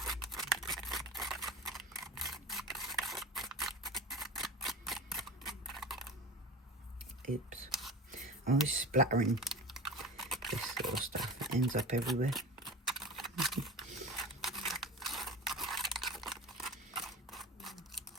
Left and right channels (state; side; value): normal; both; correlation 0.31